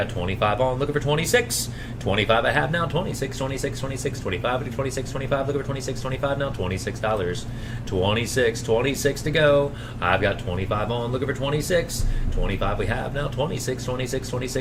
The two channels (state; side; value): identical; both; correlation 1.00